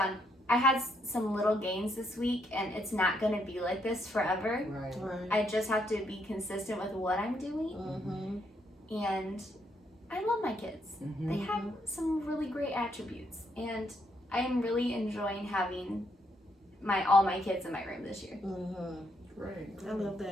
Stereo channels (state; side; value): normal; both; correlation 0.74